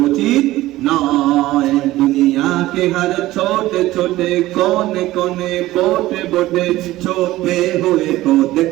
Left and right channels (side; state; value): left; quieter; 16.6 dB